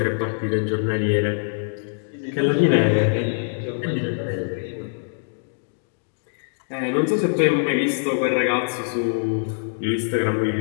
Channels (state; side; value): silent; right; digital silence